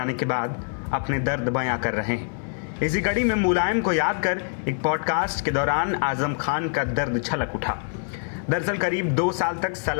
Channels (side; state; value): right; silent; 62 dB below the other